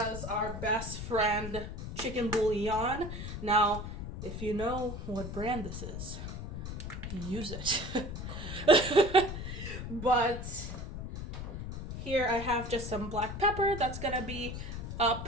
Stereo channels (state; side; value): noise; left; rumble, 7 dB below the sound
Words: our best friend chicken bouillon. Now, if you know what brand this is, use it. But here I have just some black pepper. That's gonna be